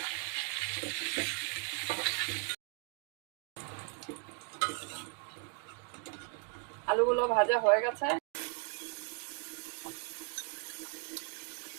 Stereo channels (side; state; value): left; quieter; 37.8 dB